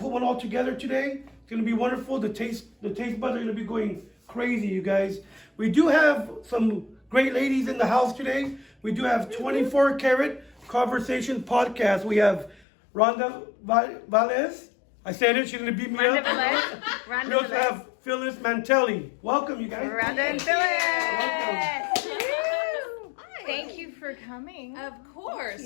one all together today. It's gonna be wonderful. The taste buds are gonna be going crazy, you guys. We do have some great ladies in the house today. We do have 24 Carat Conversations Podcast. We have Rhonda Velez. I said it, she's gonna beat me Rhonda up. Velez. We also have Phylis Mantelli. Welcome, you guys. Rhonda and Welcome. Phyllis. Thank you for coming. Of course.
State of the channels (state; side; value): drops out; right; at 12.6 s